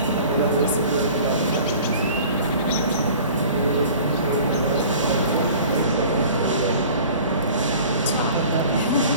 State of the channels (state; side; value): inverted; both; correlation -0.45